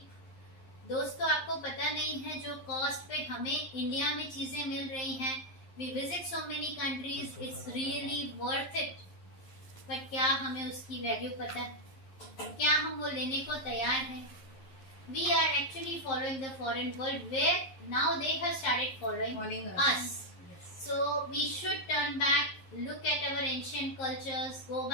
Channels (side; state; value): right; late; 11 ms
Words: दोस्तों, आपको पता नहीं है जो कॉस्ट पे हमें इंडिया में चीजें मिल रही हैं, we visit so many countries, it's really worth it, but क्या हमें उसकी वैल्यू पता है? क्या हम वो लेने को तैयार हैं? We are actually following the foreign world where now they have started following us. Yes. So we should turn back, look at our ancient cultures, go